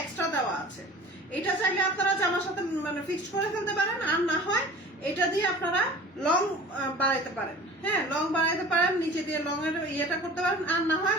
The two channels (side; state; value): both; normal; correlation 0.42